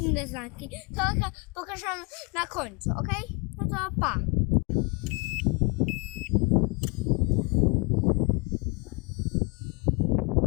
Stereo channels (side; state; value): right; quieter; 31.0 dB